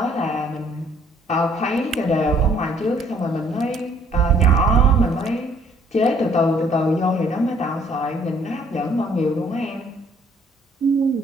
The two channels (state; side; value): normal; both; correlation 0.62